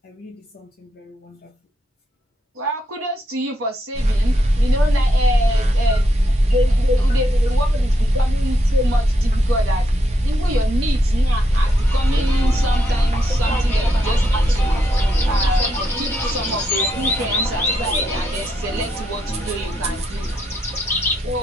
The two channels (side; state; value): both; normal; correlation 0.80